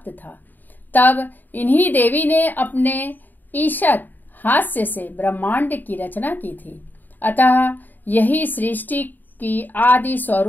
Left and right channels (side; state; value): right; late; 0.089 ms